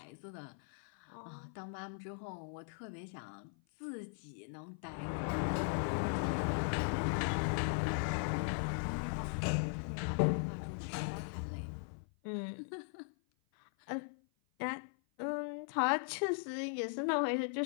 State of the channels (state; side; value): silent; right; 52 dB below the other